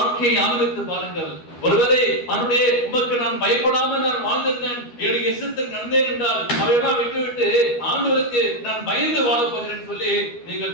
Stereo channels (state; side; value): late; right; 12 ms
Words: ஆரம்பித்து பாருங்கள். ஒருவேளை அவனுடைய உமக்கு நான் பயப்படாமல் நான் வாழ்ந்திருந்தேன், என்னுடைய இஷ்டத்துக்கு நடந்தேன் என்றால் அவையெல்லாம் விட்டுவிட்டு ஆண்டவருக்கு நான் பயந்து வாழப் போகிறேன் சொல்லி நீங்கள்